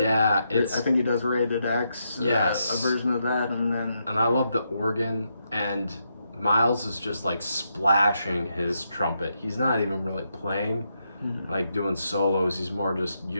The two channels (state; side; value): inverted; both; correlation -0.81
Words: I think he does Rated X. Yes, a version of that, and I love the organ, and Miles is just like splashing his trumpet. He's not even really playing, like doing solos. He's more just